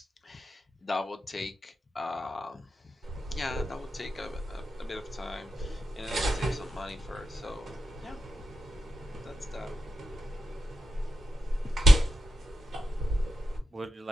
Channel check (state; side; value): normal; both; correlation 0.86